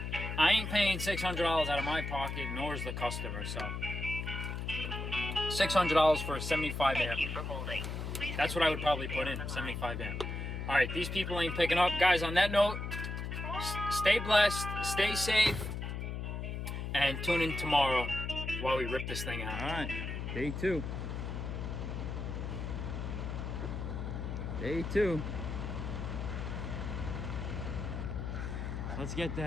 I ain't paying $600 out of my pocket, nor is the customer, so... $600 for a 75 amp. Thank you for holding. Please That's what I would probably put in, 75 amp. All right, these people ain't picking up. Guys, on that note, stay blessed, stay safe, and tune in tomorrow while we rip this thing out. All right, day 2. Day 2. Let's get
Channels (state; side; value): noise; left; hum, 4 dB below the sound